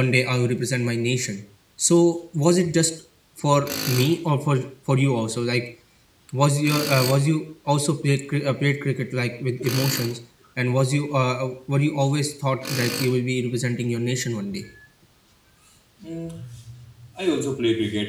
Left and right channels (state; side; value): identical; both; correlation 1.00